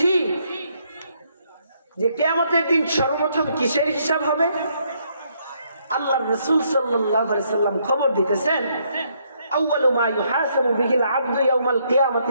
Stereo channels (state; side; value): inverted; both; correlation -0.72